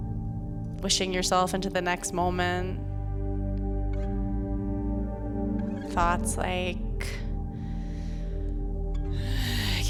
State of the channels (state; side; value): identical; both; correlation 1.00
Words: wishing yourself into the next moment. Thoughts like, I